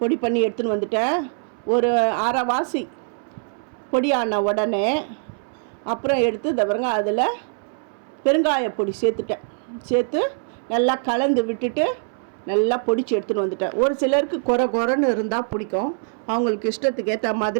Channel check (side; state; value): left; silent; 63 dB below the other